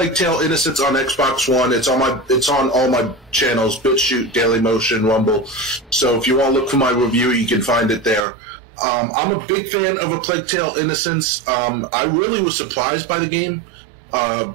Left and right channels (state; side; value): drops out; left; at 8.2 s